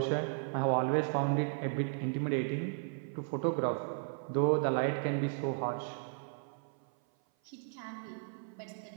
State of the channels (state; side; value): silent; left; 54 dB below the other